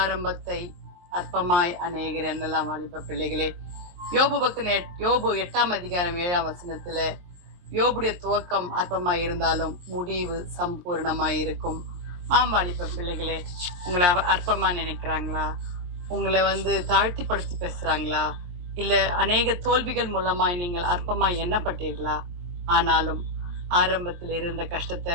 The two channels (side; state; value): left; late; 23 ms